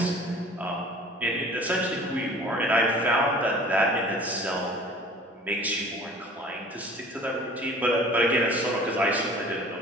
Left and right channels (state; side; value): normal; both; correlation 0.46